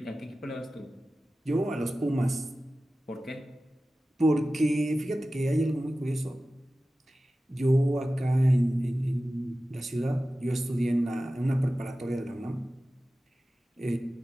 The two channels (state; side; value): normal; both; correlation 0.95